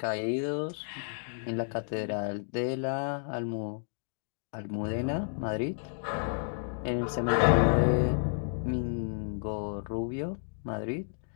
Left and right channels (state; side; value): silent; right; digital silence